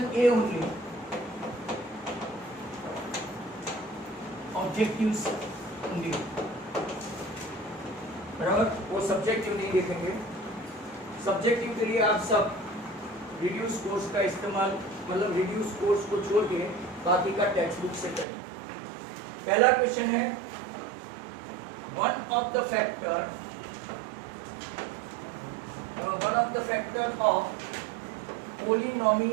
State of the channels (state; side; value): drops out; left; at 18.2 s